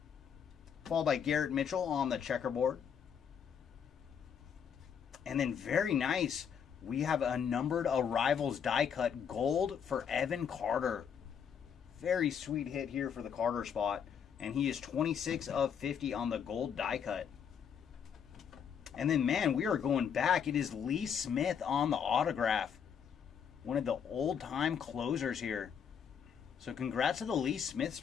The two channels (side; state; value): right; quieter; 7.6 dB